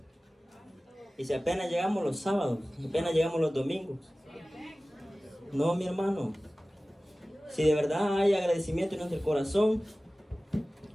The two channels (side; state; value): both; normal; correlation 0.97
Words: Y si apenas llegamos los sábados, apenas llegamos los domingos. No, mi hermano. Si de verdad hay agradecimiento en nuestro corazón,